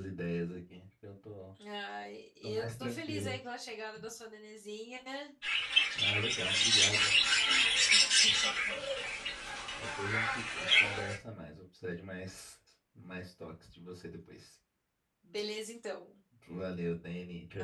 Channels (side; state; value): both; identical; correlation 1.00